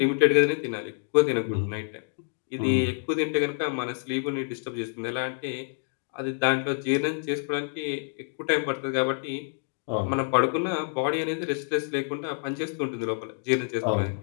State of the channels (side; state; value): right; silent; 60 dB below the other